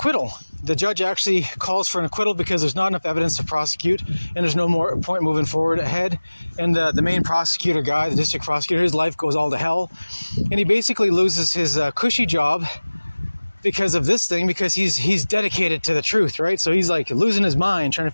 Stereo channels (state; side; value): inverted; both; correlation -1.00